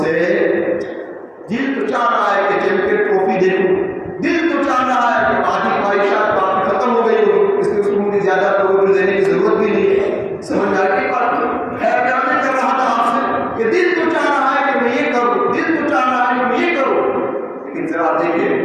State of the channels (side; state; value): both; identical; correlation 1.00